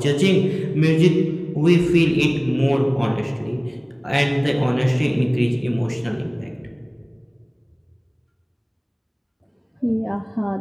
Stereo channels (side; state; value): both; identical; correlation 1.00